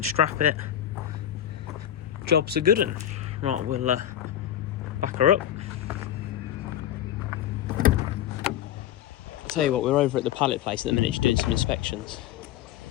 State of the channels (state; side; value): quieter; right; 11.2 dB